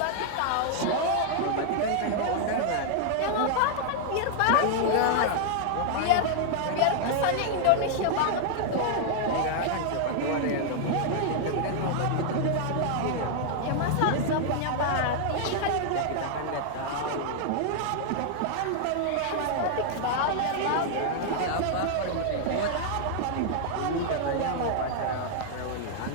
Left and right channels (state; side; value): different; both; correlation -0.01